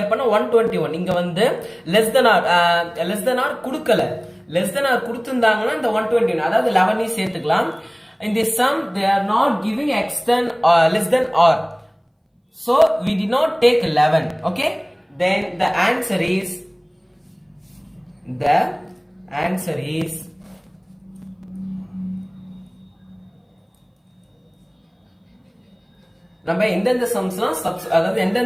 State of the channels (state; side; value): identical; both; correlation 1.00